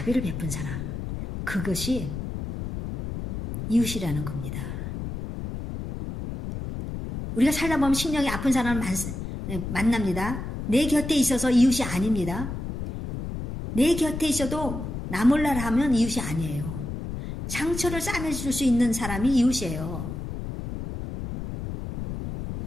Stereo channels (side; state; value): left; noise; rumble, 6 dB below the sound